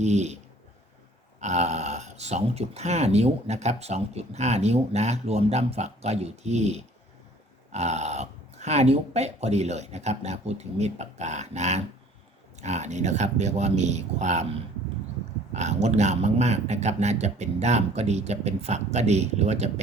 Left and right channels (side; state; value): both; normal; correlation 0.53